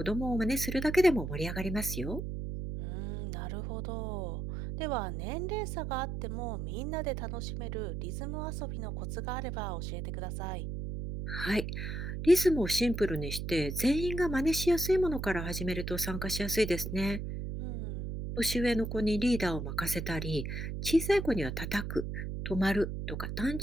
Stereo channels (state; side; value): noise; right; hum, 4 dB below the sound